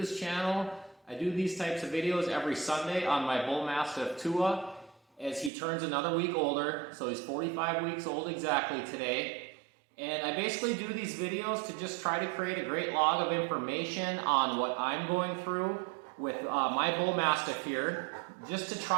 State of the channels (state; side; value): drops out; left; at 5.5 s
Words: channel, I do these types of videos every Sunday on my Bullmastiff Tua as he turns another week older. So he's 45 weeks old exactly today. And I basically do these videos to just try to create a great log of information on what I'm going through with my Bullmastiff here, just to